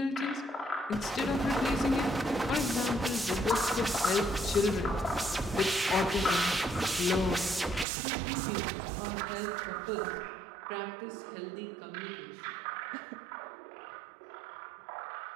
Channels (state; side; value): drops out; left; at 7.9 s